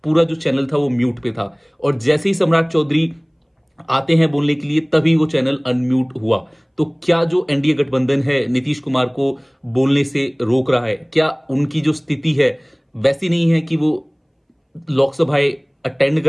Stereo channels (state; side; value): identical; both; correlation 1.00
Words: पूरा जो चैनल था वो म्यूट पे था। और जैसे ही सम्राट चौधरी आते हैं बोलने के लिए, तभी वो चैनल अनम्यूट हुआ। तो क्या जो एनडीए गठबंधन है नीतीश कुमार को बोलने से रोक रहा है, क्या उनकी जो स्थिति है वैसी नहीं है कि वो लोकसभाएं अटेंड